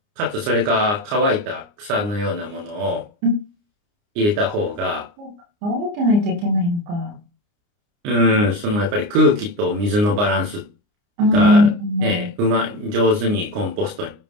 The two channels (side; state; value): left; late; 29 ms